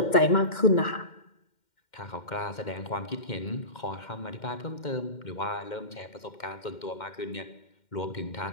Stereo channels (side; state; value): right; late; 2.1 ms